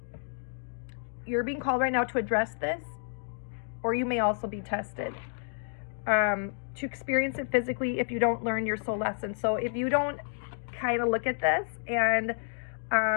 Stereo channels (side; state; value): right; silent; digital silence